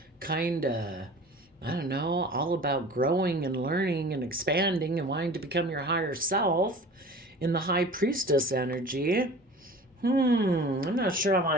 kind of, I don't know, all about growing and learning and expanding and wanting to become your higher self in the high priestess energy. I'm not sure I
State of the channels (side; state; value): both; normal; correlation 0.41